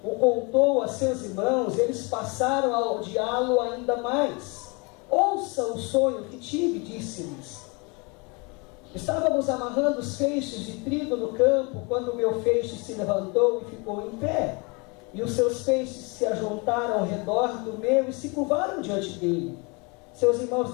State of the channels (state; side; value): quieter; right; 29.9 dB